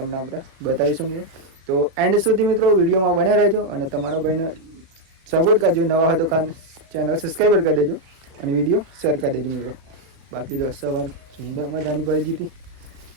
આપણે બતાવીશું મિત્રો. તો એન્ડ સુધી મિત્રો વિડીયોમાં બને રહેજો અને તમારા ભાઈને સપોર્ટ કરજો. નવા હોય તો ચેનલ સબસ્ક્રાઈબર કરી દેજો અને વિડીયો શેર કરી દેજો મિત્રો. બાકી જો સવાર સુંદર મજાની પડી હતી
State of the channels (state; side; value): late; left; 36 ms